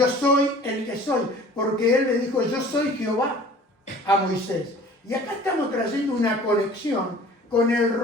soy el que soy, porque él le dijo, yo soy Jehová a Moisés. Y acá estamos trayendo una conexión con el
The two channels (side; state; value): both; normal; correlation 0.47